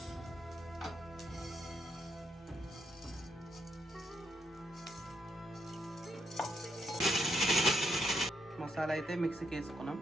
మసాలా అయితే మిక్సీకి వేసుకున్నాం.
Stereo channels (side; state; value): both; normal; correlation 0.78